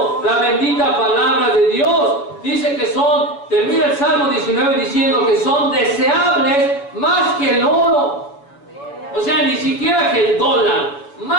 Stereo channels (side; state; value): right; late; 7.0 ms